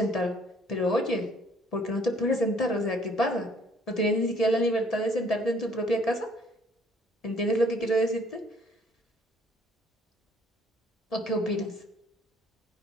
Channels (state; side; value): normal; both; correlation 0.60